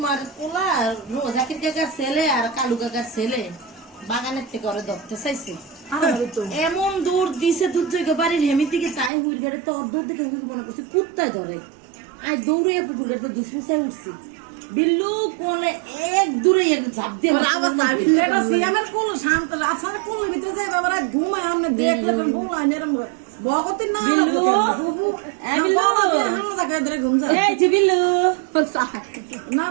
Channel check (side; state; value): left; drops out; at 9.1 s